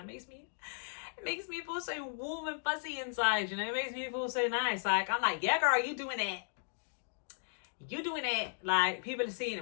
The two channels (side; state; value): right; silent; digital silence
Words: makes me feel so warm and fuzzy inside, you know. It makes me feel so nice. Like, I'm like, yeah, girl, you doing it. Like, people are seeing